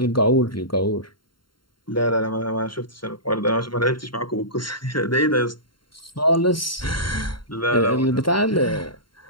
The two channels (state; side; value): late; right; 0.72 ms